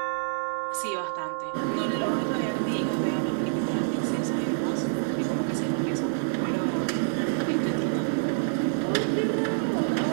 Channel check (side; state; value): left; silent; 59 dB below the other